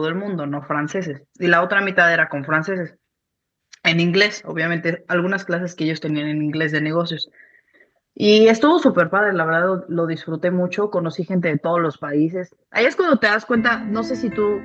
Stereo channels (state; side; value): identical; both; correlation 1.00